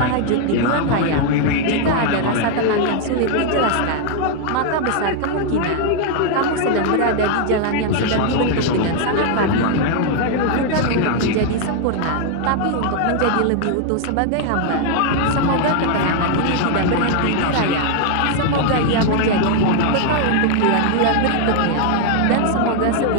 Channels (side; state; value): both; different; correlation 0.00